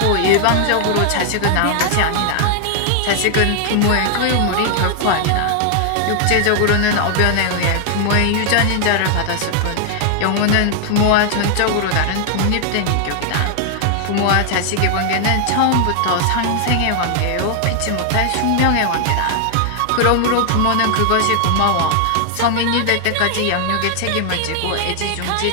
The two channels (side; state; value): both; different; correlation 0.00